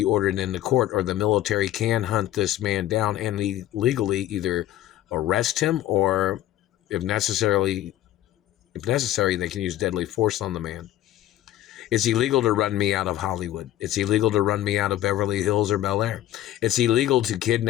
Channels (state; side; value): quieter; right; 13.4 dB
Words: ordered into court or the military can hunt this man down and legally either arrest him or, if necessary, they can use deadly force on the man. It's illegal to run me out of Hollywood. It's illegal to run me out of Beverly Hills or Bel Air. It's illegal to